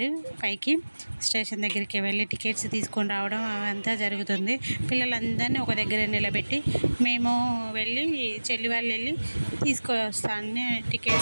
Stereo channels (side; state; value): both; inverted; correlation -1.00